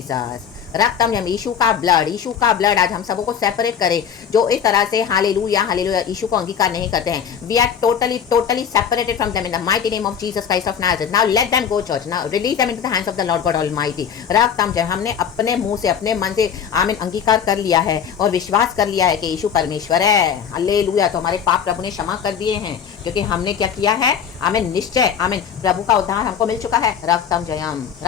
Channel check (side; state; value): right; quieter; 7.7 dB